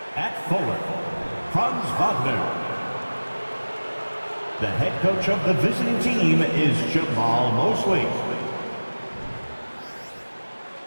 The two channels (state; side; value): inverted; both; correlation -1.00